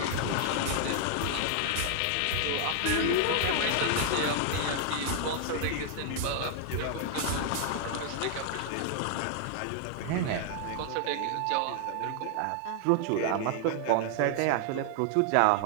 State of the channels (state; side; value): different; both; correlation 0.00